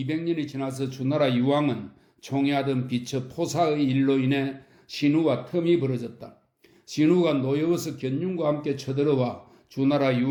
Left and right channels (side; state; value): both; identical; correlation 1.00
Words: 지나서 주나라 유왕은 총애하던 비처 포사의 일로 인해 신우와 텀이 벌어졌다. 신우가 노여워서 견융과 함께 쳐들어와 주나라